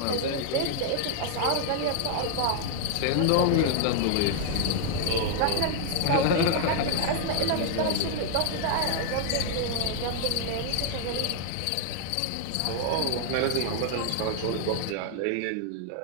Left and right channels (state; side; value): different; both; correlation 0.00